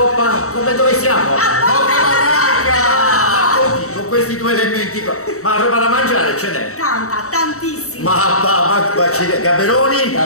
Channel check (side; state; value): right; late; 0.64 ms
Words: dove siamo? Coppa Barranca! Con questi due elementi qua. Ma roba da mangiare ce n'è? Tantissima. Ma Gaberoni?